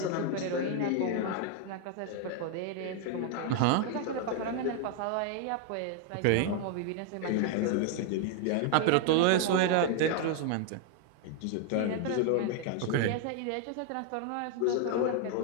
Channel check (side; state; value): both; different; correlation 0.00